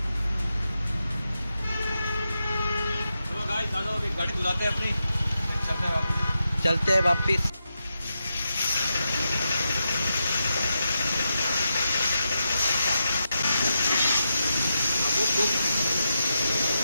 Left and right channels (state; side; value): inverted; both; correlation -0.87